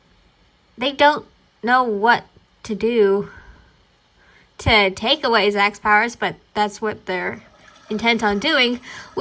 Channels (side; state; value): both; identical; correlation 1.00